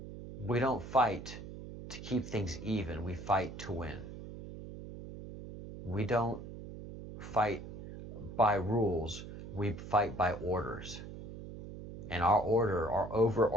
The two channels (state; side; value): noise; right; hum, 11 dB below the sound